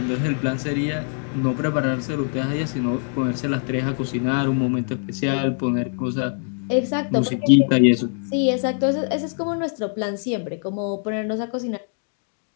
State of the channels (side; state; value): right; silent; 56 dB below the other